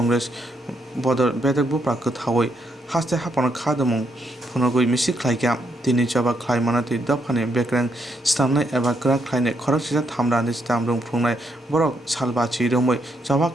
बदर बेदक बुप्रा कथावै हास्ते हाफाना खादमुं फुनगुइ मिसि क्लाइका तिनि जबा क्लाइमाना ति दफाने बेक्रें स्टामनाय एबा क्रा क्लाइने खरक सिजा थामरानि स्टाम रुं फुंनाय बरक सालबाची रोमै जबा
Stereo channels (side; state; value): both; normal; correlation 0.76